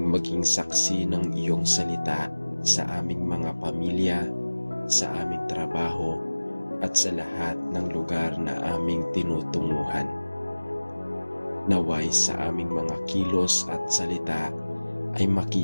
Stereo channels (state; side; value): inverted; both; correlation -1.00